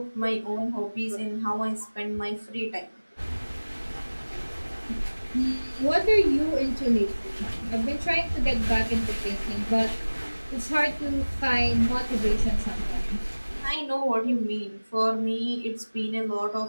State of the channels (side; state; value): both; inverted; correlation -1.00